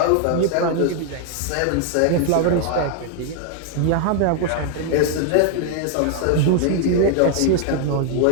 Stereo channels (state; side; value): different; both; correlation 0.00